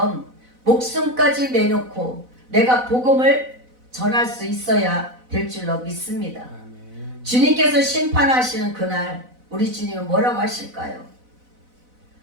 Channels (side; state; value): left; late; 4.0 ms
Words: 목숨까지 내놓고 내가 복음을 전할 수 있어야 될 줄로 믿습니다. 아멘. 주님께서 심판하시는 그날 우리 주님은 뭐라고 하실까요?